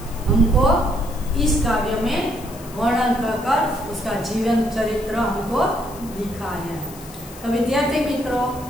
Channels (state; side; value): noise; left; hiss, 18 dB below the sound